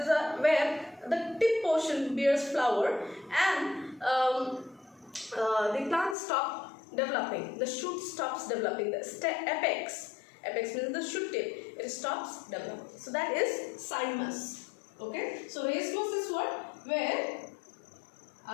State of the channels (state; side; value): drops out; right; at 6.2 s